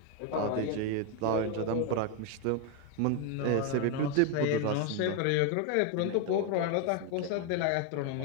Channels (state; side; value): different; both; correlation 0.01